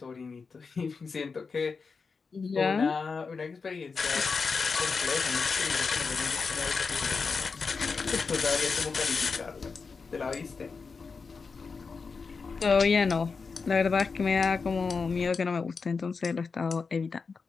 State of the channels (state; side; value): quieter; right; 4.9 dB